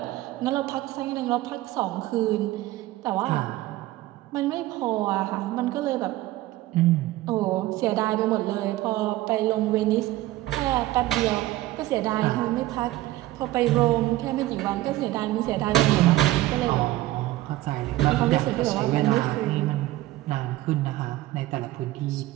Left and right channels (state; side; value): quieter; left; 16.6 dB